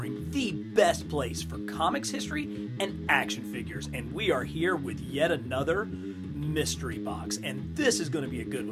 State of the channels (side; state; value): both; identical; correlation 1.00